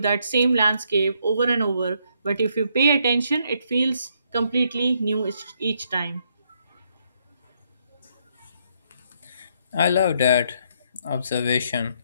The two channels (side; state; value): both; inverted; correlation -0.73